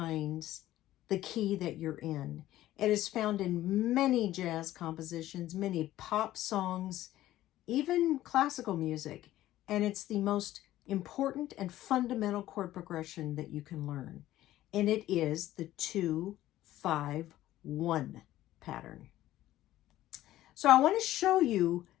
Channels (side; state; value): right; quieter; 14.5 dB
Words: the key that you're in. It is found in many jazz compositions, many pop songs, even classical music, and it's the most important and fundamental chord progression that you can learn. And it is the 2-5-1 pattern. So I want to show you